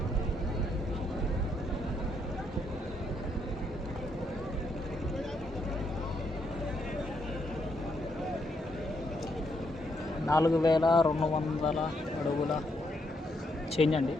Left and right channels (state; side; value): normal; both; correlation 0.76